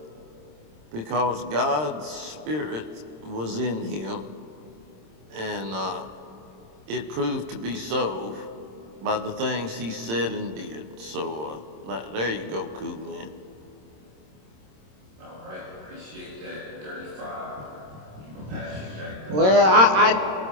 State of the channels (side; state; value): left; late; 26 ms